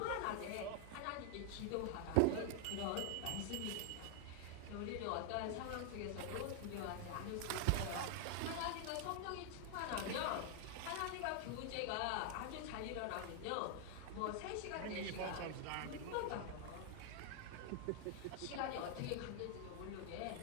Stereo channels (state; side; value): different; both; correlation 0.00